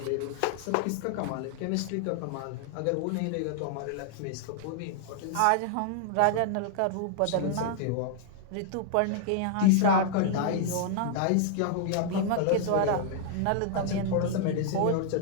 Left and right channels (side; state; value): both; different; correlation 0.00